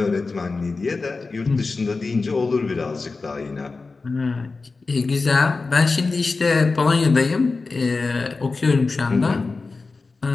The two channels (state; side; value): quieter; right; 4.0 dB